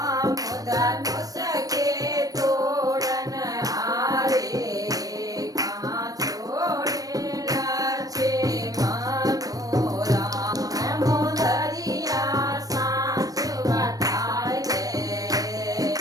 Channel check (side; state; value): left; late; 0.18 ms